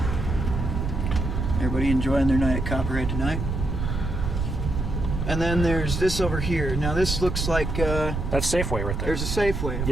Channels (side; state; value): right; noise; rumble, 2 dB below the sound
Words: Everybody enjoying their night at Copperhead tonight. And then there's this over here. Now this looks like That's Safeway right there. there's a Safeway. Of